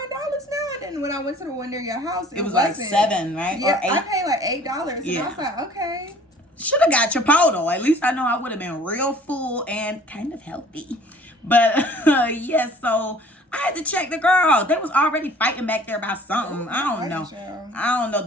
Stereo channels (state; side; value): normal; both; correlation 0.51